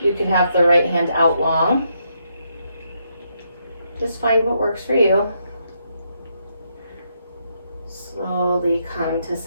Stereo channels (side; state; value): both; inverted; correlation -0.78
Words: You can have the right hand out long. Just find what works for you. Slowly come to